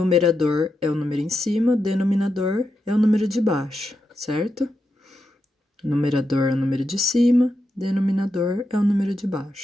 é o número em cima, denominador é o número de baixo, certo? Numerador é o número de cima, denominador é o número de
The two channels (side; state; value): both; normal; correlation 0.86